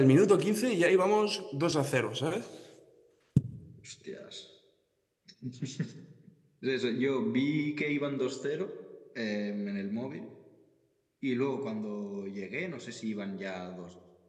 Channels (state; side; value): identical; both; correlation 1.00